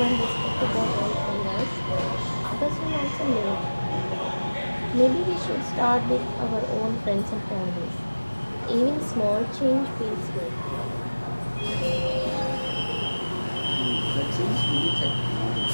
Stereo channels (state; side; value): inverted; both; correlation -1.00